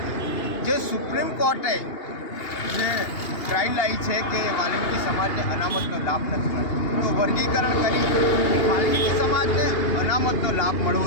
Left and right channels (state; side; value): late; right; 2.8 ms